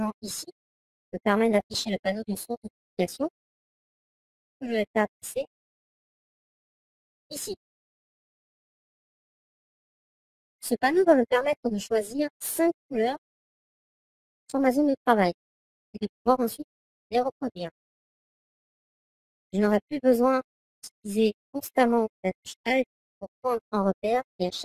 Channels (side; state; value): both; identical; correlation 1.00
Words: ici me permet d'afficher le panneau de source de publication que je vais faire passer ici. Ce panneau va me permettre de choisir 5 couleurs sur ma zone de travail et de pouvoir ensuite les reproduire. Je n'aurai plus besoin d'utiliser constamment la touche Alt pour prendre un repère et à